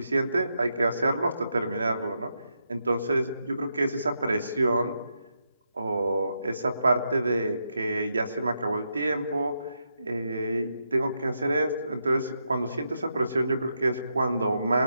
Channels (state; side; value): inverted; both; correlation -0.83